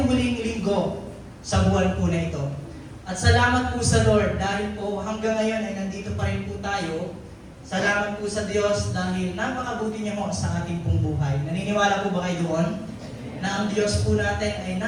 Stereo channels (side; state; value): both; identical; correlation 1.00